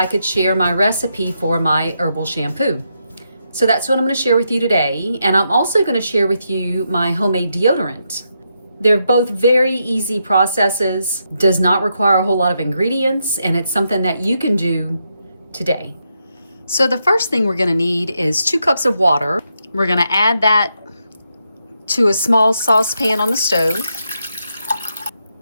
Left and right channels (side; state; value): both; inverted; correlation -0.82